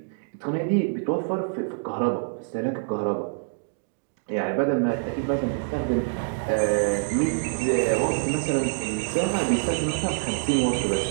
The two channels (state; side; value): silent; left; digital silence